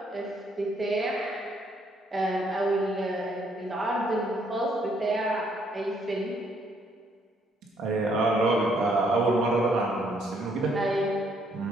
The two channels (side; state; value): both; normal; correlation 0.69